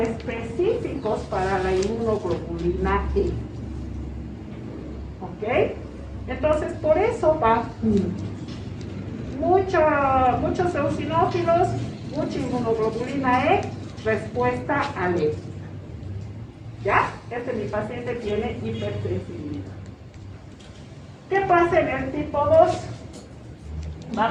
para la inmunoglobulina E. ¿Ok? Entonces, por eso va muchos eosinófilos, mucha inmunoglobulina E, respuesta alérgica. ¿Ya? Mi paciente tiene hipersensibilidad. ¿Qué pasa en el tipo 2?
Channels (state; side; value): identical; both; correlation 1.00